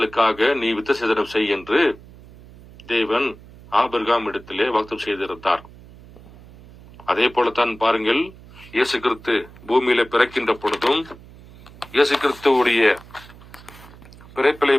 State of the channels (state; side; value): noise; right; hum, 21 dB below the sound